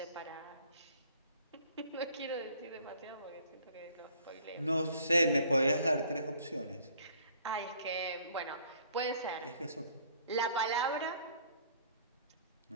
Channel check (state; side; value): inverted; both; correlation -0.57